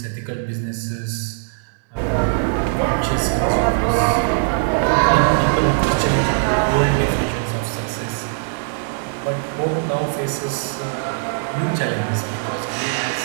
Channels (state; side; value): silent; left; 65 dB below the other